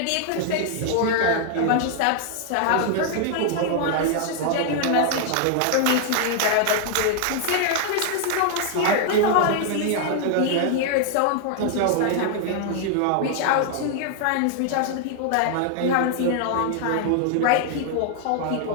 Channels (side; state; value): both; different; correlation 0.00